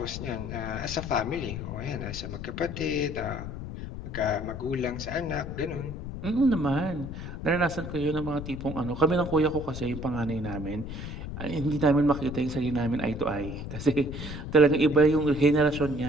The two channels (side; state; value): left; noise; rumble, 8 dB below the sound